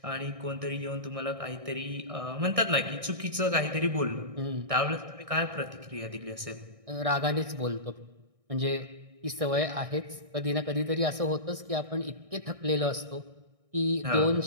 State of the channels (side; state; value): left; late; 1.6 ms